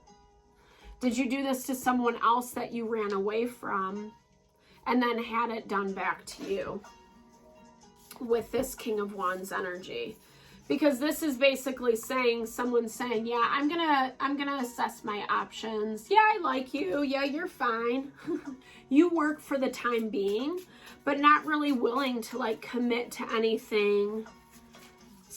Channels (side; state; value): both; identical; correlation 1.00